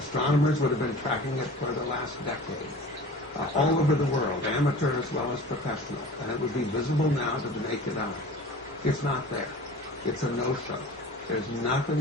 would have been tracking it for the last decade, all over the world, amateur as well as professional, and it would be visible now to the naked eye. It's not there. It's a no-show. There's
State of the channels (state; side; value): normal; both; correlation 0.39